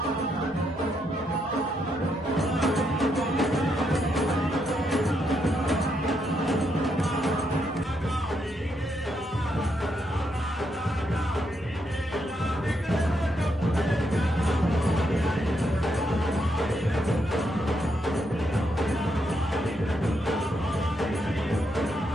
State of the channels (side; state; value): right; noise; hum, 23 dB below the sound